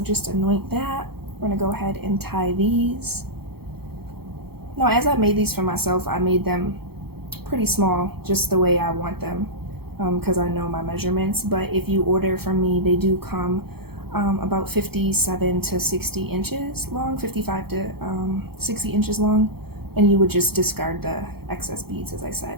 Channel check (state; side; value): late; left; 0.96 ms